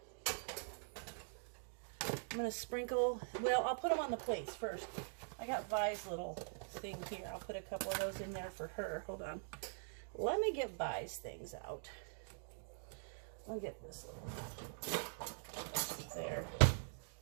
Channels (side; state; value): left; silent; digital silence